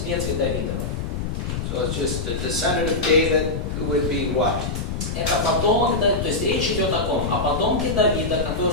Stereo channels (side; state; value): left; noise; rumble, 3 dB below the sound